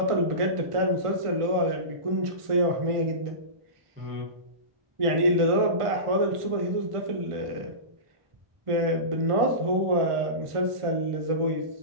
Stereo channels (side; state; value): left; late; 1.5 ms